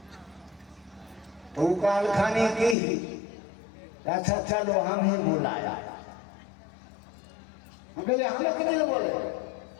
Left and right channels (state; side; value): drops out; right; at 2.8 s